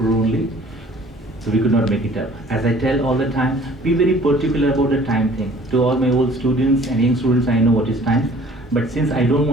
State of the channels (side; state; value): both; normal; correlation 0.52